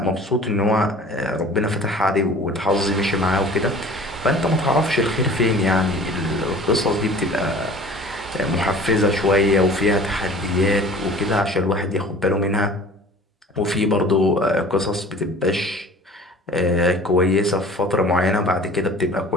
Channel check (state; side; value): normal; both; correlation 0.45